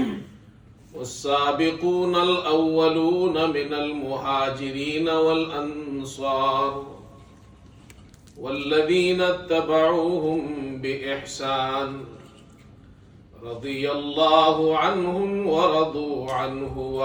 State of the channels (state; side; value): identical; both; correlation 1.00